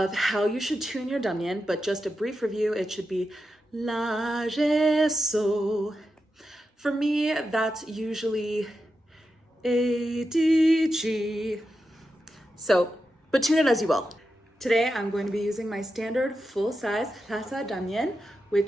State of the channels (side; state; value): both; normal; correlation 0.89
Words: how you should tune your Dranyen, but just a brief review, it should be La, Re, So. For me, that's usually A, D, G. So, but tune it as you will. Today, I'm going to be using my standard full-size Lhasa Dranyen,